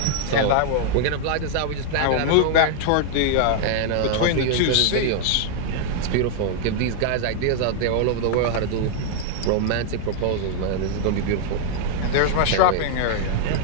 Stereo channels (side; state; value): both; different; correlation -0.01